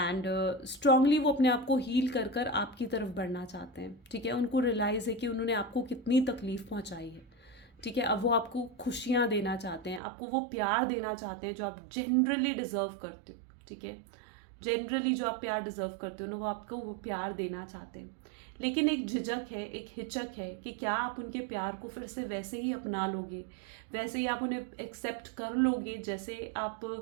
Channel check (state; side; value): drops out; left; at 10.0 s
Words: स्ट्रांगली वो अपने आप को हील कर कर आपकी तरफ बढ़ना चाहते हैं, ठीक है। उनको रियलाइज़ है कि उन्होंने आपको कितनी तकलीफ़ पहुँचाई है, ठीक है। अब वो आपको खुशियाँ देना चाहते हैं, आपको वो प्यार देना चाहते हैं जो आप जनरली डिज़र्व करते हो, ठीक है। जनरली जो आप प्यार डिज़र्व करते हो ना, वो आपको वो प्यार देना चाहते हैं, लेकिन एक झिझक है, एक हिचक है कि क्या आप उनके प्यार को फिर से वैसे ही अपना लोगे, वैसे ही आप उन्हें एक्सेप्ट कर लोगे जैसे आप